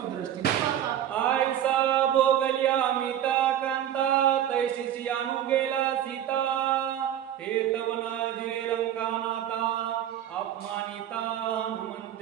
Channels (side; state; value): left; quieter; 10.9 dB